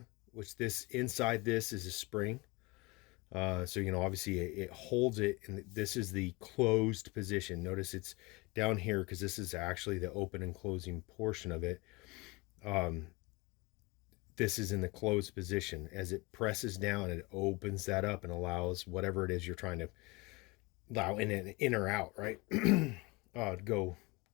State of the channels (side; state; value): right; quieter; 25.0 dB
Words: which inside this is a spring. So, obviously it holds it, and this is the closed position. Notice it's down here because this is actually the open and closing portion of it. This is in the closed position. As it presses down, it opens that up and allows whatever it is you're trying to allow in or out, right? To